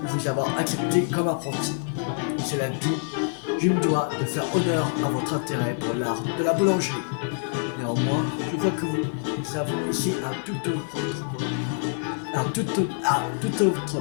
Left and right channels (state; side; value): silent; right; 58 dB below the other